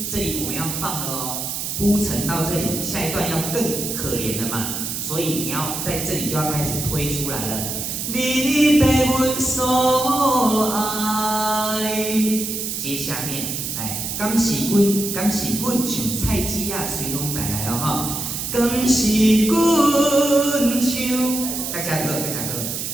这里我们要放了哦，铺陈到这里，下一段要更可怜了嘛，所以你要在这里就要开始推出来了。你被阮所爱，接下面来，敢是阮像菜籽仔随风带来哦哈，敢是阮像，大家好，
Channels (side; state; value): right; noise; hiss, 4 dB below the sound